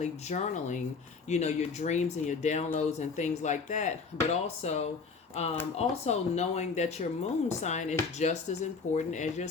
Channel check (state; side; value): quieter; right; 4.9 dB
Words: journaling, your dreams and your downloads and things like that, but also knowing that your moon sign is just as important as your